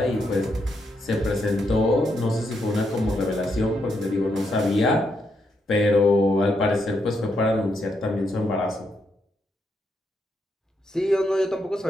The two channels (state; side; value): normal; both; correlation 0.80